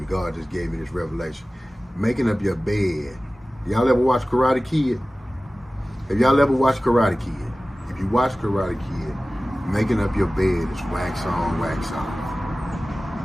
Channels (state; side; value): normal; both; correlation 0.97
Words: God just gave me this revelation. Making up your bed. Y'all ever watch Karate Kid? Have y'all ever watched Karate Kid? If you watch Karate Kid, making up your bed is wax on, wax off.